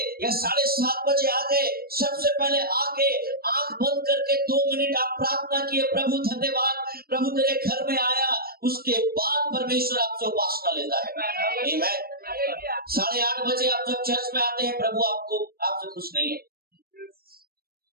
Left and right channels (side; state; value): left; late; 0.44 ms